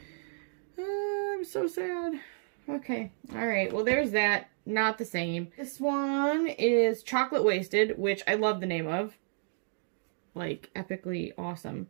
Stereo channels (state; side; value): silent; left; digital silence